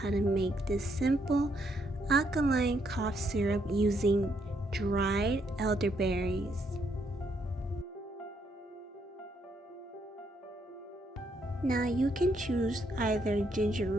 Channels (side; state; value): both; normal; correlation 0.74